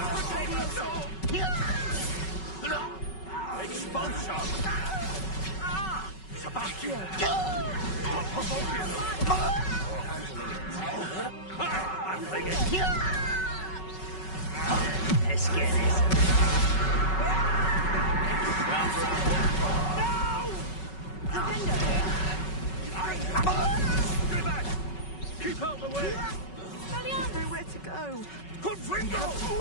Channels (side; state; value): right; late; 5.3 ms